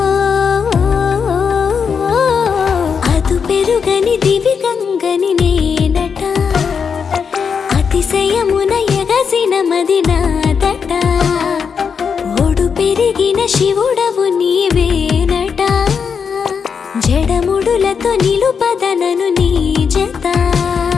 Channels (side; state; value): right; quieter; 6.3 dB